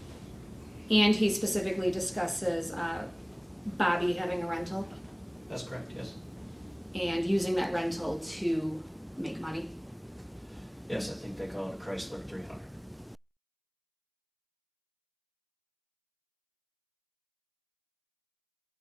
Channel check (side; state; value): both; identical; correlation 1.00